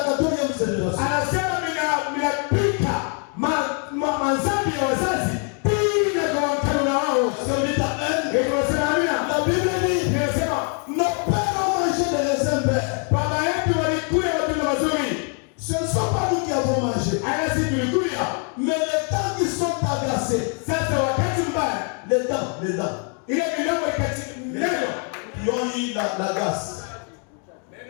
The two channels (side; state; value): right; quieter; 39.7 dB